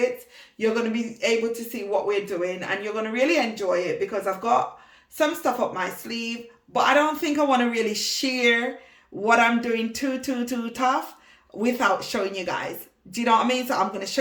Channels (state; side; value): identical; both; correlation 1.00